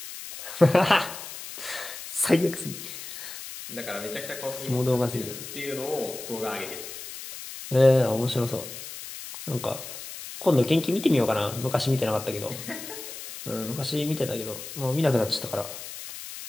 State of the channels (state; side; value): noise; left; hiss, 11 dB below the sound